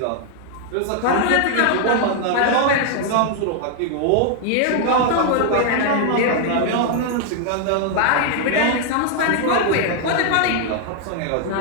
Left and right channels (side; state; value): both; different; correlation 0.00